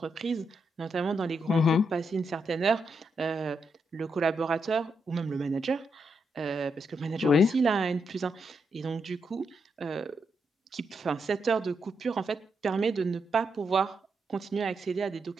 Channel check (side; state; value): both; normal; correlation 0.82